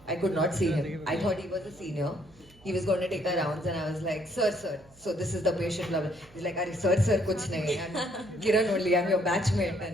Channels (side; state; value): right; noise; hum, 27 dB below the sound